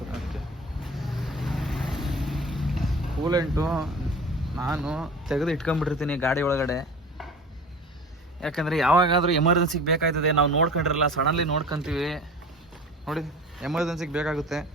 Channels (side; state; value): both; normal; correlation 0.38